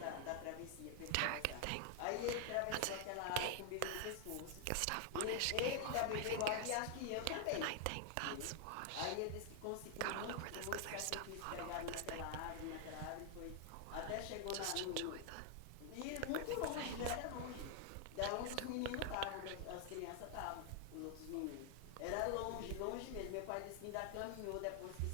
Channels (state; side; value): different; both; correlation 0.00